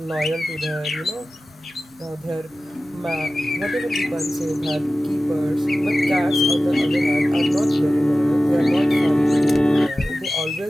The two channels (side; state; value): both; normal; correlation 0.95